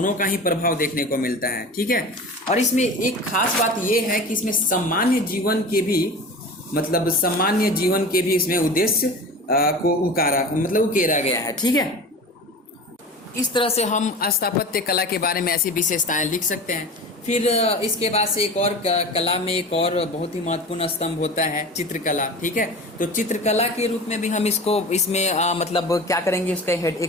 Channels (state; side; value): normal; both; correlation 0.34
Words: का ही प्रभाव देखने को मिलता है। ठीक है, और इसमें एक खास बात यह है कि इसमें सामान्य जीवन के भी मतलब सामान्य जीवन के भी इसमें उद्देश्य को उकेरा गया है। ठीक है, इस तरह से हम स्थापत्य कला के बारे में ऐसी विशेषताएं लिख सकते हैं। फिर इसके बाद से एक और कला में एक और बहुत ही महत्वपूर्ण स्तंभ होता है चित्रकला। ठीक है, तो चित्रकला के रूप में भी हम इसको इसमें मतलब क्या करेंगे, उसका